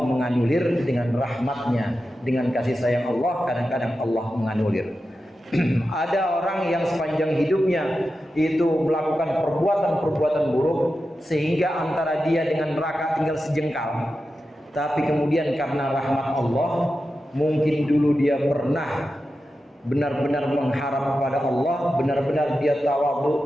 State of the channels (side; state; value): both; normal; correlation 0.91